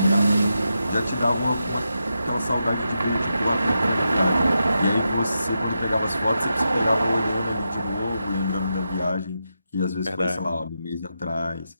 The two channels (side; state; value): both; inverted; correlation -0.86